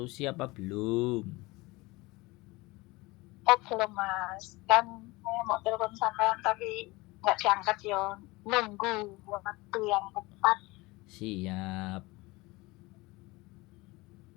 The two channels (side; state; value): right; quieter; 22.5 dB